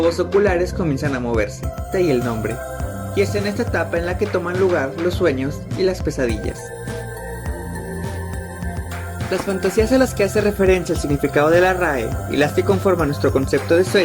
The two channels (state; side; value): identical; both; correlation 1.00